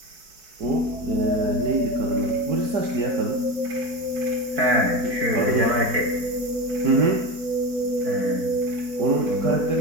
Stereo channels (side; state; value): left; late; 4.6 ms